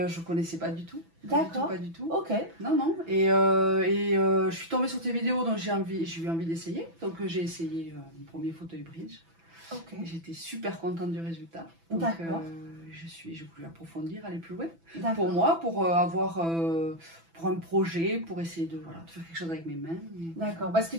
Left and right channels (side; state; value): left; late; 6.0 ms